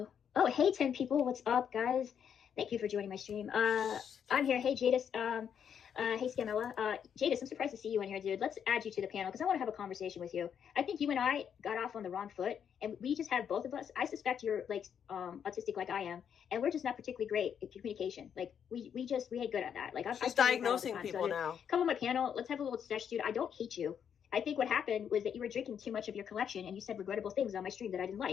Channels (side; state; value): right; quieter; 8.1 dB